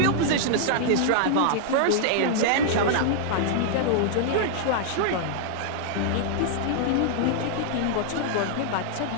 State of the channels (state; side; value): different; both; correlation -0.01